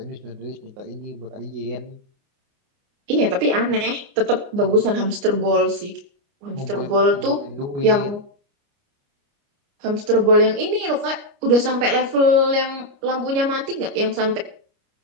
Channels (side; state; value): left; late; 29 ms